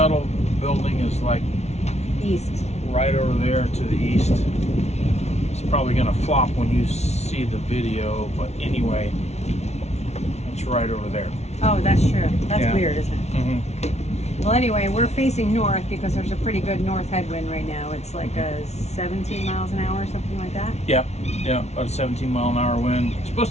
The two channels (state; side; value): late; right; 0.32 ms